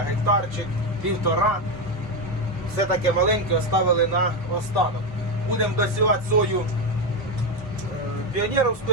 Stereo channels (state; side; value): normal; both; correlation 0.09